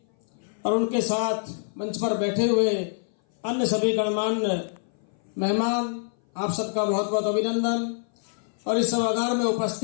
और उनके साथ मंच पर बैठे हुए अन्य सभी गणमान्य मेहमान, आप सबका बहुत बहुत अभिनंदन। और इस सभागार में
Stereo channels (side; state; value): right; silent; 58 dB below the other